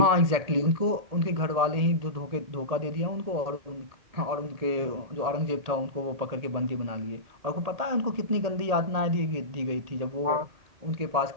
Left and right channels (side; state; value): left; late; 1.8 ms